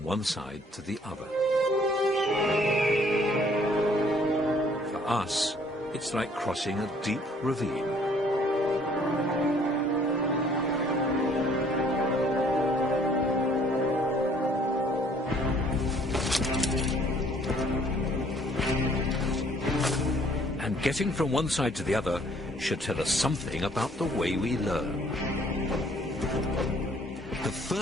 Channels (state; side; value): normal; both; correlation 0.60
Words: one side to the other. For us, it's like crossing a deep ravine. And getting from one side to the other should tell us something about the way we learn. The